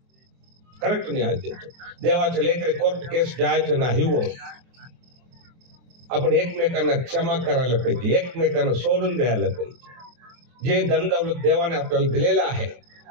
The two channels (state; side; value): late; left; 23 ms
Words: करेक्ट न्याय देतो. देवाचे लेकरे कोर्ट केस जायचं नाही हो. आपण एकमेकांना क्षमा करायला पाहिजे, एकमेकांना सोडून द्यायला पाहिजे. जे धन दौलत देवाने आपल्याला दिलेलं आहे,